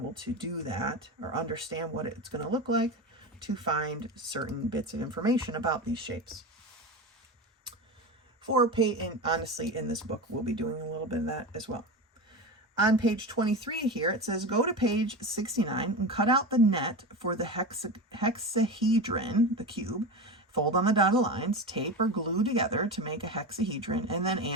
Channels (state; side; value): normal; both; correlation 0.23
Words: to do that or understand what it's going to look like to find certain bits of information about these shapes. And honestly, in this book, we'll be doing a little bit of that as well. On page 23 here, it says, go to page 69 and cut out the net for the hexahedron, the cube, fold on the dotted lines, tape or glue together to make a hexahedron, and then